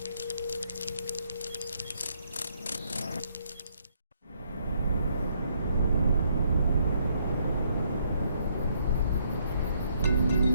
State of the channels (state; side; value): inverted; both; correlation -0.71